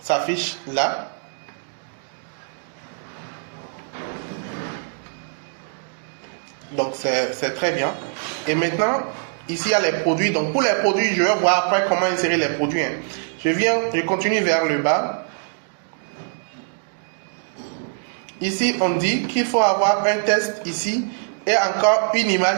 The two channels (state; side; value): silent; left; digital silence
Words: là. Donc, c'est très bien. Et maintenant, ici, il y a les produits. Donc, pour les produits, je vais voir après comment insérer les produits. Hein. Je continue vers le bas. Ici, on dit qu'il faut avoir un test ici et encore une